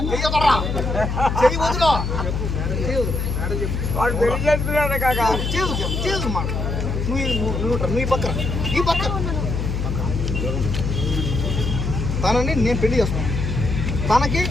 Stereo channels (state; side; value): noise; left; hum, 1 dB below the sound